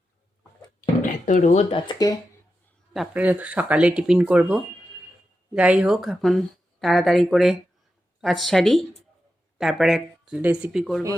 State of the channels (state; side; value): normal; both; correlation 0.89